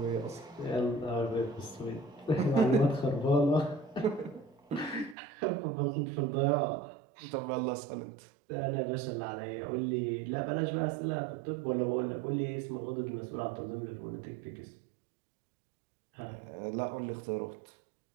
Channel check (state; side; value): drops out; left; at 5.2 s